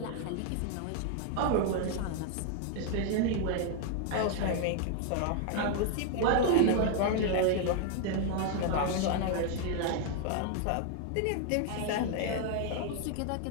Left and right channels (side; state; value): both; different; correlation 0.00